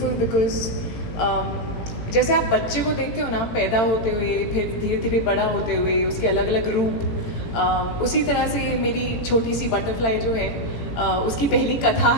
because जैसे आप बच्चे को देखते हो ना पैदा होते हुए, फिर धीरे धीरे बड़ा होते हुए, उसके अलग अलग रूप, उसी तरह से मेरी छोटी सी बटरफ्लाई जो है उसकी पहली कथा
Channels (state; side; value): late; right; 18 ms